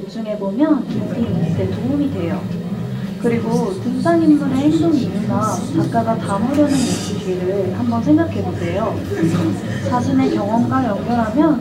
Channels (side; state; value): both; identical; correlation 1.00